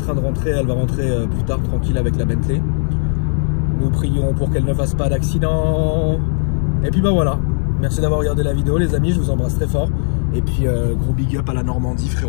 de rentrer. Elle va rentrer plus tard, tranquille, avec la Bentley. Nous prions pour qu'elle ne fasse pas d'accident. Et puis bah voilà. Merci d'avoir regardé la vidéo, les amis. Je vous embrasse très fort. Et puis gros big up à la Normandie,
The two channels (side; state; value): right; silent; digital silence